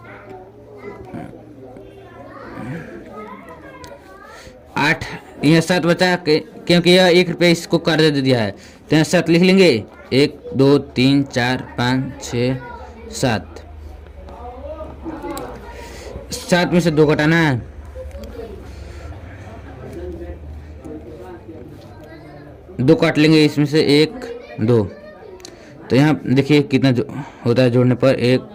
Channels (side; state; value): both; identical; correlation 1.00